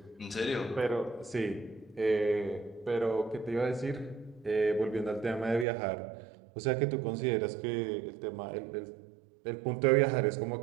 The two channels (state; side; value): drops out; left; at 5.7 s